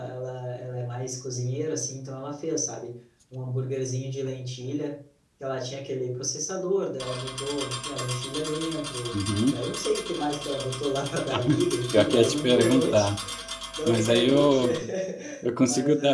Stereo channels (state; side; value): identical; both; correlation 1.00